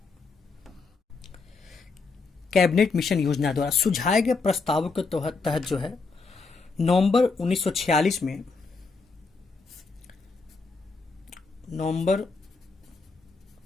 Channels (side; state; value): right; quieter; 4.3 dB